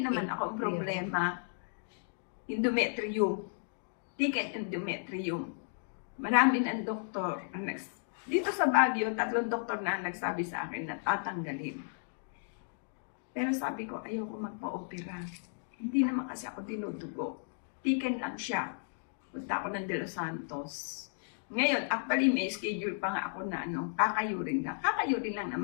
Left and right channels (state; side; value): silent; right; digital silence